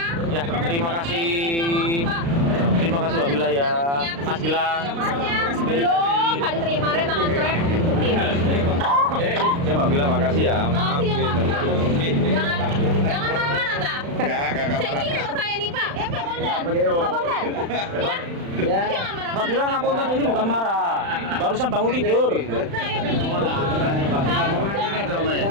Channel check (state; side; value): late; left; 36 ms